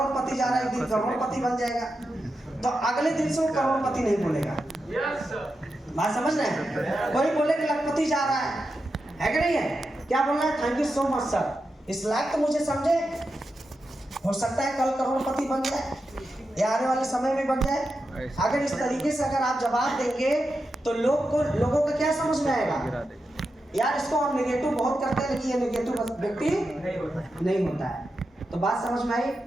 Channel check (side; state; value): both; normal; correlation 0.89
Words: जा रहा है, एक दिन करोड़पति बन जाएगा, तो अगले दिन से वो करोड़पति नहीं बोलेगा। बात समझ रहे हैं? कोई बोले कि लखपति जा रहा है कि नहीं है? क्या बोलना है? Thank you so much sir. इस लायक तो मुझे समझे, हो सकता है कल करोड़पति बन जाए या आने वाले समय में बन जाए। अगर इस तरीके से अगर आप जवाब देंगे तो लोगों को क्या समझ में आएगा? यार इसको हम नेगेटिव बहुत करते हैं, लेकिन ये नेगेटिव व्यक्ति नहीं होता है। तो बात समझ में आई?